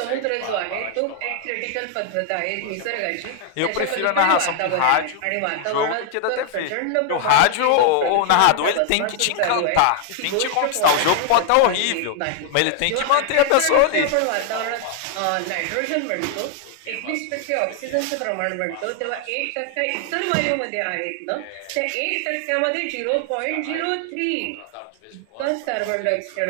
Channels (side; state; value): both; different; correlation 0.00